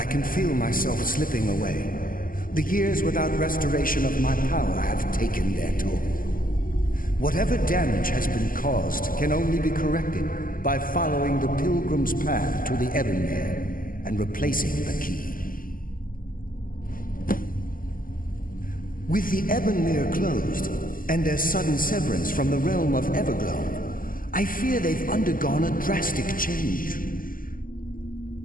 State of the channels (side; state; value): right; late; 0.41 ms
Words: can feel myself slipping away. The years without restoration of my power have taken their toll. Whatever damage has been caused can only be corrected by following the pilgrim's path to the Ebonmere and replacing the key. With the Ebonmere closed, and their sudden severance from the realm of Everglow, I fear they've undergone a drastic change.